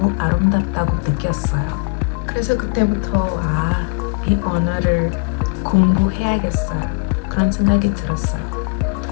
아름답다고 느꼈어요. 그래서 그때부터 이 언어를 공부해야겠어요. 그런 생각이 들었어요.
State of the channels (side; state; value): right; quieter; 33.4 dB